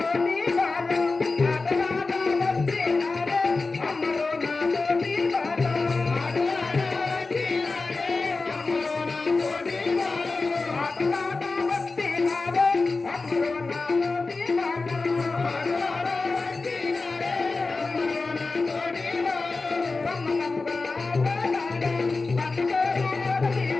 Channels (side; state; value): right; quieter; 3.8 dB